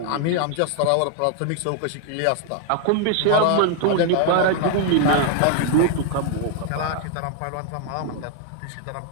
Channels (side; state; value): both; different; correlation 0.00